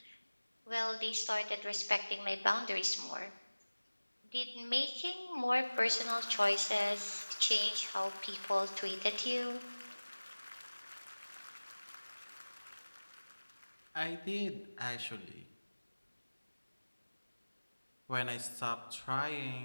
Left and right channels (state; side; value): inverted; both; correlation -1.00